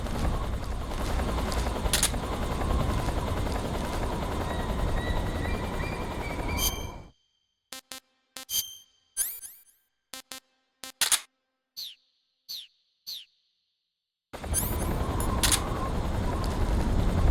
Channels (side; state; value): both; identical; correlation 1.00